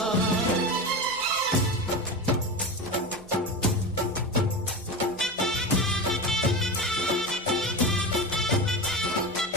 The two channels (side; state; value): both; normal; correlation 0.24